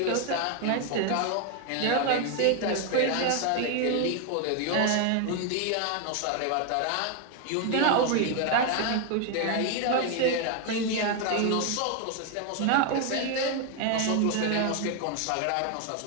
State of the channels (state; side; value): different; both; correlation 0.01